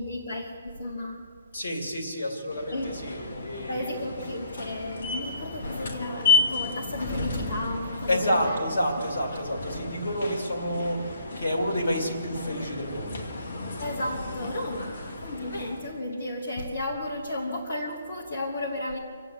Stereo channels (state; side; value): inverted; both; correlation -0.65